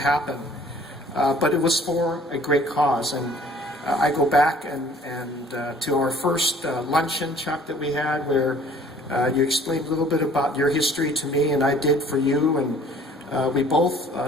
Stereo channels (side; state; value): both; normal; correlation 0.53